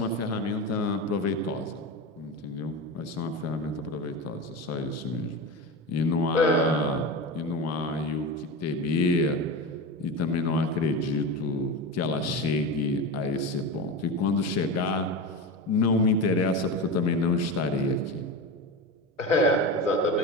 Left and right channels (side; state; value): both; normal; correlation 0.23